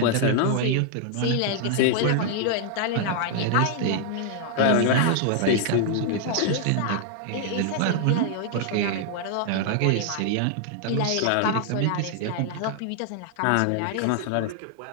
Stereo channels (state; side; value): different; both; correlation 0.00